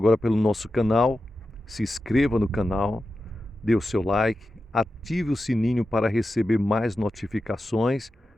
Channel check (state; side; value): normal; both; correlation 0.91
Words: pelo nosso canal, se inscreva no canal, dê o seu like, ative o sininho para receber mais notificações